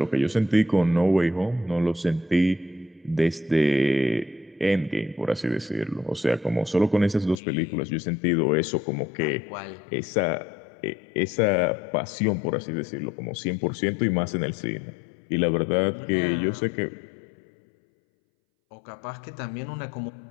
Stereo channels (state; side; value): drops out; right; at 7.4 s